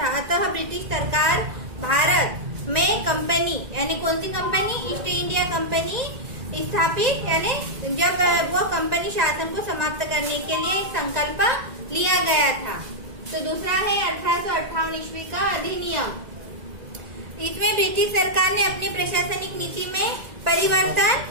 अतः ब्रिटिश सरकार भारत में कंपनी यानी कौन सी कंपनी, ईस्ट इंडिया कंपनी स्थापित यानी जब वो कंपनी शासन को समाप्त करने के लिए एक संकल्प लिया गया था। तो दूसरा है 1858 ईस्वी का अधिनियम। इसमें ब्रिटिश सरकार ने अपनी प्रशासनिक नीति में परिवर्तन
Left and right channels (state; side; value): late; left; 1.9 ms